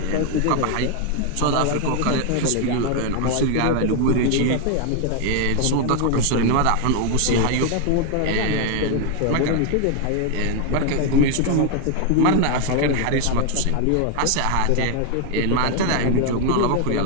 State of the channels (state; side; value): different; both; correlation 0.00